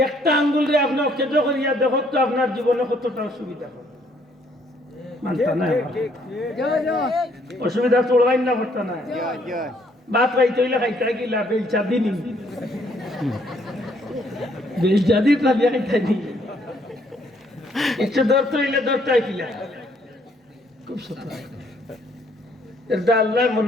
একটা আঙ্গুল রে আপনি কেটে করিয়া দেখো তো আপনার জীবনে কতটা অসুবিধা হবে মানতা না অসুবিধা চলবাই না করতে না বাপ খাইতে হইলে খাইতে গিলা বেলচা দিনি বেলচা দিত না বিয়া খাইতে নি একটু ধরতে হইলে ধরতে কিলা খুব সত্য এটা আল্লাহ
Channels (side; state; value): both; normal; correlation 0.66